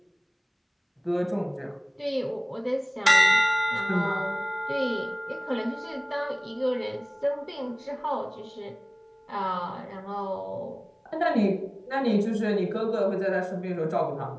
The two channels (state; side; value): identical; both; correlation 1.00